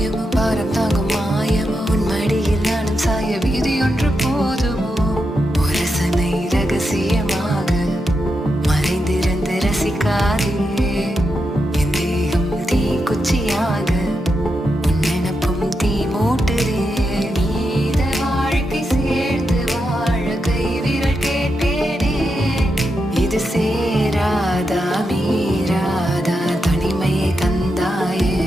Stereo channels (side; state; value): both; normal; correlation 0.86